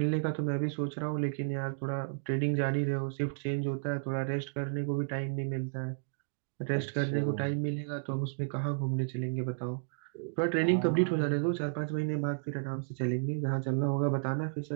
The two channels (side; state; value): left; silent; digital silence